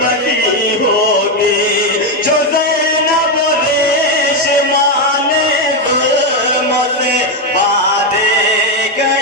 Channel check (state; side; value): normal; both; correlation 0.06